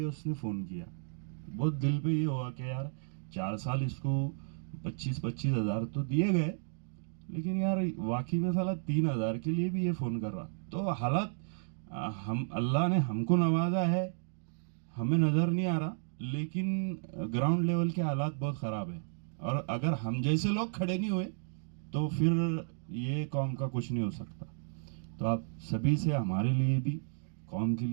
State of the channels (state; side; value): silent; left; digital silence